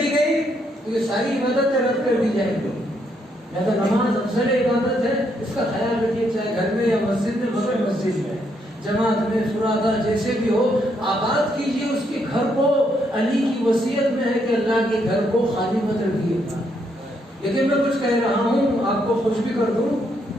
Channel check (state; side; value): normal; both; correlation 0.75